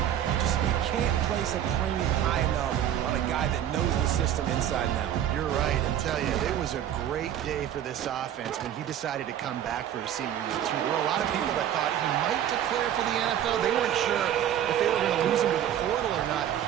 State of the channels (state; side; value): quieter; left; 10.6 dB